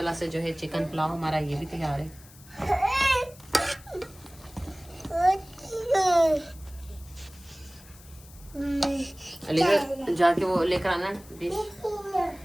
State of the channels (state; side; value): noise; left; hiss, 22 dB below the sound